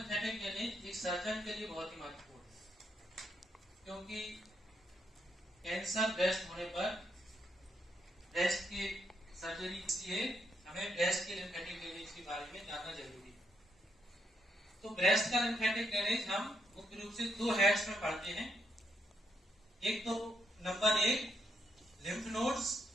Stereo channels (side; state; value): both; normal; correlation 0.77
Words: ड्रेनेज एक सर्जन के लिए बहुत ही महत्वपूर्ण है, क्योंकि कैंसर ब्रेस्ट होने पर ब्रेस्ट की सर्जरी के लिए हमें ब्रेस्ट के लिम्फेटिक ड्रेनेज के बारे में जानना जरूरी है। तो ब्रेस्ट का लिम्फेटिक ड्रेनेज हम मुख्य रूप से दो हेड्स में पढ़ते हैं। एक तो नंबर 1 लिम्फ नोड्स,